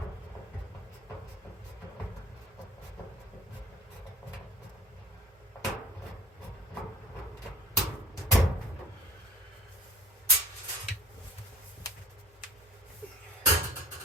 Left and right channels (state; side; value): normal; both; correlation 0.43